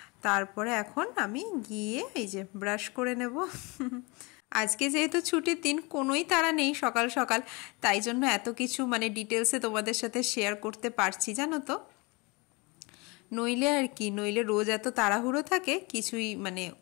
তারপরে এখন আমি গিয়ে এই যে ব্রাশ করে নেব। আজকে যেহেতু ছুটির দিন, কোনোই তাড়া নেই সকাল সকাল, তাই জন্য এত কিছু ডিটেলসে তোমাদের সাথে শেয়ার করতে পারছি, জানো তো। নইলে রোজ এত তাড়াহুড়ো থাকে, কিছুই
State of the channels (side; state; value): right; quieter; 27.2 dB